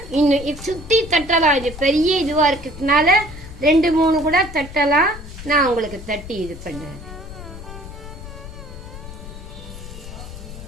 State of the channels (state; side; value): noise; left; rumble, 13 dB below the sound